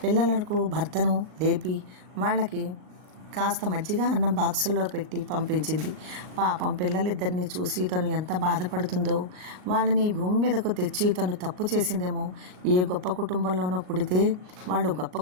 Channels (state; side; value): late; left; 38 ms